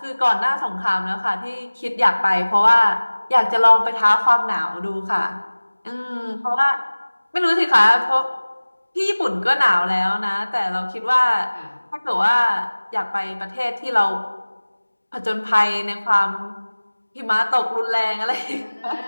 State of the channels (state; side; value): inverted; both; correlation -1.00